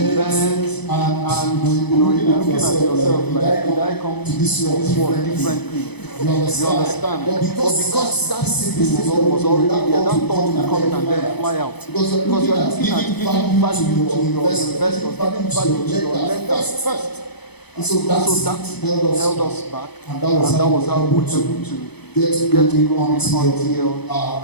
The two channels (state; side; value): late; right; 0.98 ms